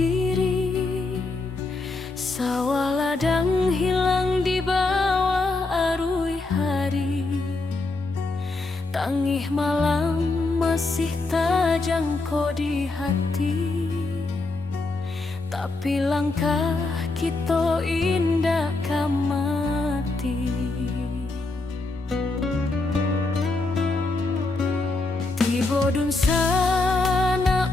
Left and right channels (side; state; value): right; quieter; 3.3 dB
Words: sawah ladang hilang di bawah arui hari. Tangih malam masih tajangko di hati, tapi langkah kita indah kamati. Bodun